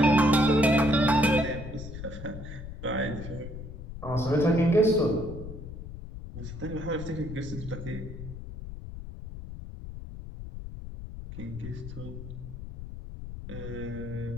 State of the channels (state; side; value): noise; left; rumble, 10 dB below the sound